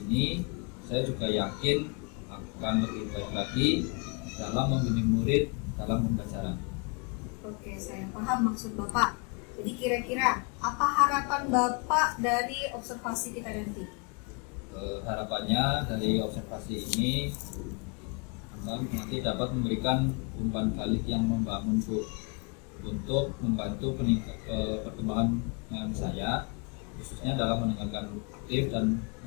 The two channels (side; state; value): right; quieter; 33.6 dB